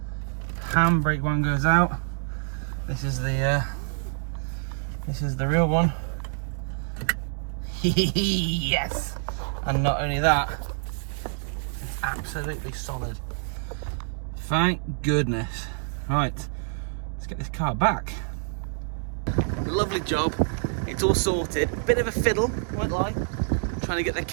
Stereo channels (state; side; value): silent; left; 60 dB below the other